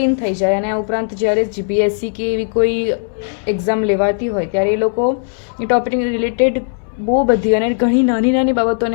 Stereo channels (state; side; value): silent; right; digital silence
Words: થઈ જાય. અને આ ઉપરાંત જ્યારે જીપીએસસી કે એવી કોઈ એક્ઝામ લેવાતી હોય ત્યારે એ લોકો એ ટોપિકની રિલેટેડ બહુ બધી અને ઘણી નાની